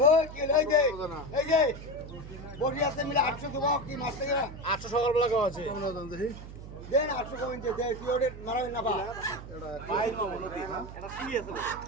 ও কি লই দে এই যে বডি আছে মিলে 800 দেব কি মাছ থেকে 800 সকালবেলা কেমন আছে কেমন দাম দেখি দেন 800 কমেন দে দে কি ওরে মারাই না বা বাইর মামু নদী এটা কি আছে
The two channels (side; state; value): right; noise; hum, 13 dB below the sound